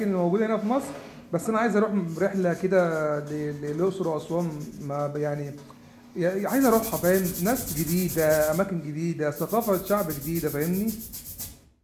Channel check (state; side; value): identical; both; correlation 1.00